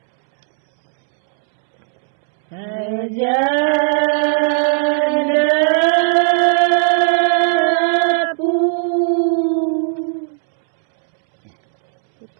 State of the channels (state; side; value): silent; left; 69 dB below the other